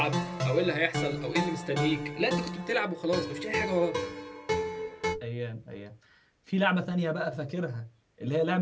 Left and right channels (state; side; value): identical; both; correlation 1.00